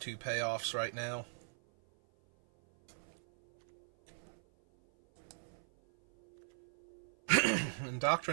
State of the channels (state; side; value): silent; left; 52 dB below the other